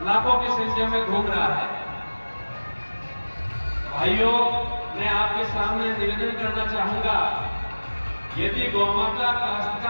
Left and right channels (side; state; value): both; inverted; correlation -1.00